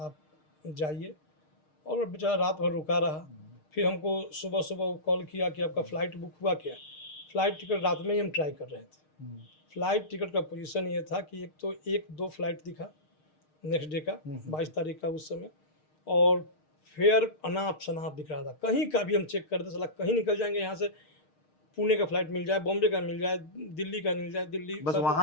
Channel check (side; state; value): right; late; 6.5 ms